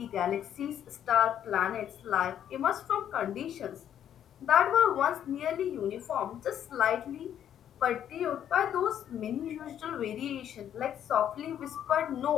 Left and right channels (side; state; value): right; quieter; 10.0 dB